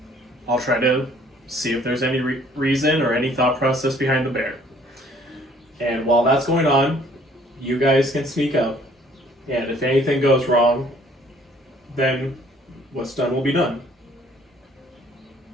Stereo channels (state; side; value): normal; both; correlation 0.59